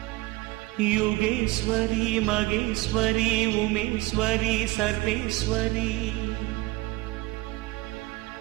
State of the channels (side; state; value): left; quieter; 21.0 dB